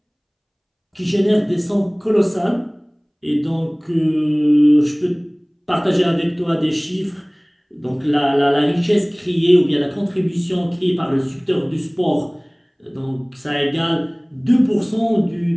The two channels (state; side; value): identical; both; correlation 1.00